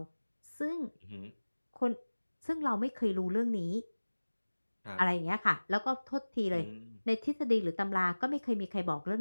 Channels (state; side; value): inverted; both; correlation -1.00